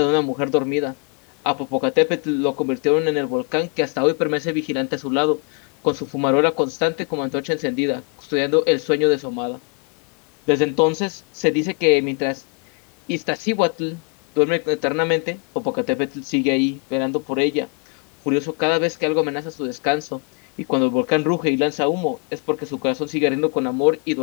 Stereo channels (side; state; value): right; quieter; 32.2 dB